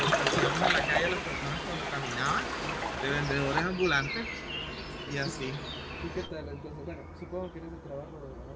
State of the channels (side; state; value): both; identical; correlation 1.00